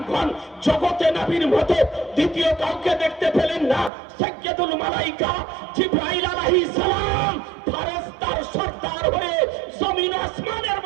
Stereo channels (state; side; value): drops out; left; at 3.9 s